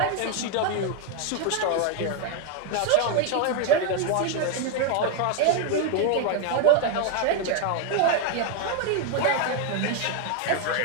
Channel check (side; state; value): both; different; correlation 0.01